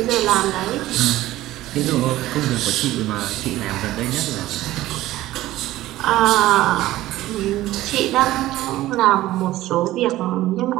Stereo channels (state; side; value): quieter; left; 15.8 dB